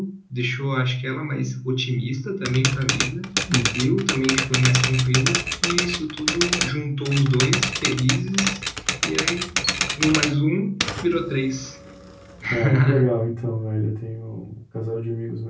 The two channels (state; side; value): identical; both; correlation 1.00